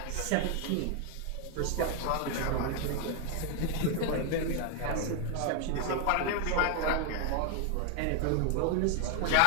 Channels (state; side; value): different; both; correlation 0.00